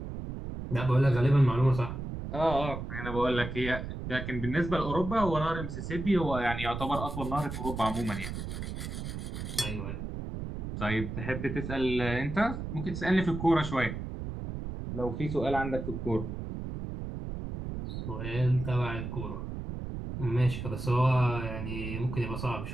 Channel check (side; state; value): right; noise; rumble, 6 dB below the sound